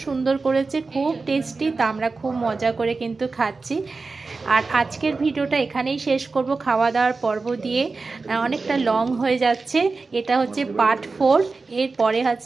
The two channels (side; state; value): left; quieter; 4.0 dB